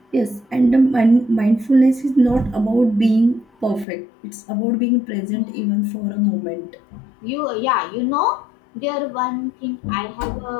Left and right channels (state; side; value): drops out; right; at 3.9 s